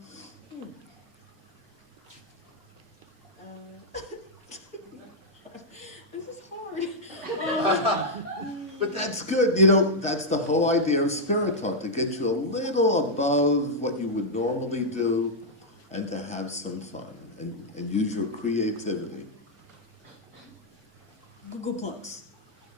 This is hard. But that's good. You know, that's the whole idea of Spirit Talk, to get you a little above what you would normally do and to have some fun and use your creativity. Google Plus.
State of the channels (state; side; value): normal; both; correlation -0.03